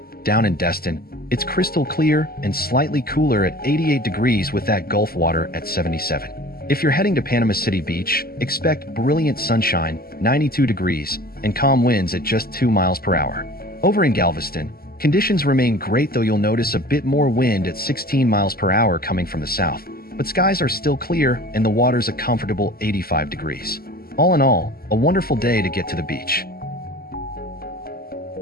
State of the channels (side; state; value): right; late; 0.44 ms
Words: Down in Destin, it's crystal clear and slightly cooler at 88 degrees with that Gulf water at 77. If you're heading to Panama City Beach, expect brilliant sunshine, 92 degrees, and calm winds at just 2 miles per hour. Over in Galveston, conditions remain great, though you'll notice a bit more wind at 16 miles per hour coming from the south. But skies are still clear and the water's a comfortable 85 degrees. All in all, a wonderful day to get to the beach.